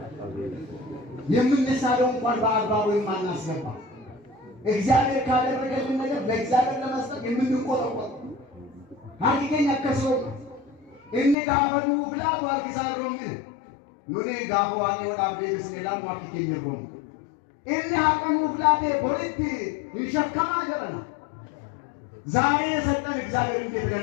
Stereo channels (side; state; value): right; drops out; at 11.4 s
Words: የምንሳለው እንኳን በአግባቡ የማናስገባ እግዚአብሔር ካደረገልን ነገር ለእግዚአብሔር ለመስጠት የምንቆጠቆጥ ሀቂቀኛ ከሰው እንጋበሉ ብላ ዋርጊሳሮም nuni gaafa waaqni walaaf deebisnee ilaallu akka keenya roonu. Inni haqamuuf laatee boritti hin shakkamaa jedhama. ዛሬ የሰጠን እግዚአብሔር እንዴት